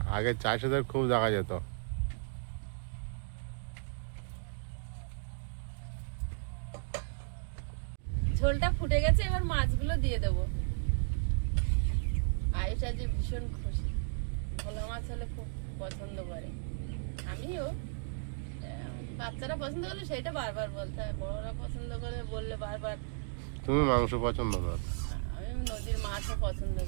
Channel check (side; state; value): left; silent; digital silence